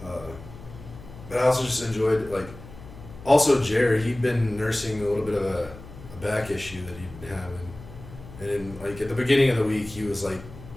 But I also just enjoyed, like, also Jared, he'd been nursing a little bit of a back issue that he'd been having. And then, like, at the beginning of the week, he was, like,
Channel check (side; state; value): left; noise; hum, 16 dB below the sound